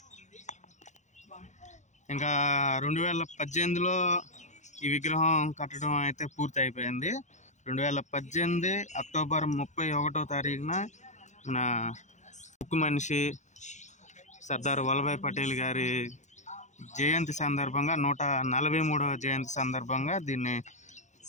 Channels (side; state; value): right; late; 0.34 ms